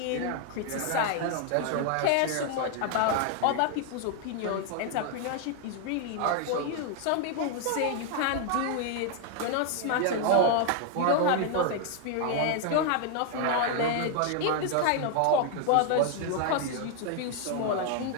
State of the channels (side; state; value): both; different; correlation 0.00